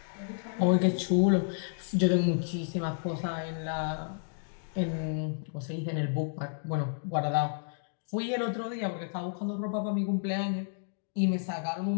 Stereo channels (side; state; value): right; silent; digital silence